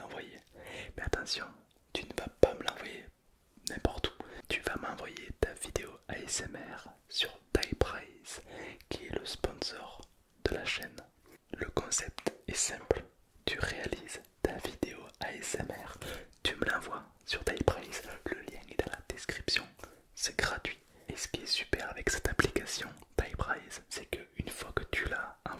Mais attention, tu ne vas pas me l'envoyer n'importe où. Tu vas m'envoyer ta vidéo ASMR sur Typrise, qui est le sponsor de la chaîne. Le concept est simple. Tu réalises ta vidéo ASMR, tu me l'envoies sur Typrise, le lien est dans la description, c'est gratuit. Et ce qui est super avec cette application Typrise, c'est qu'une fois que tu l'as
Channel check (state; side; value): identical; both; correlation 1.00